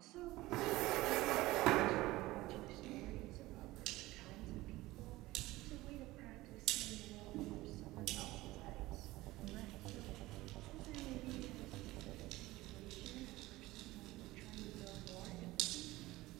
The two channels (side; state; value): left; quieter; 18.6 dB